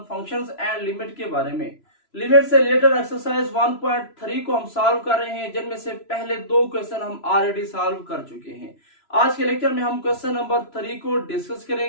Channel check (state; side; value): late; right; 3.0 ms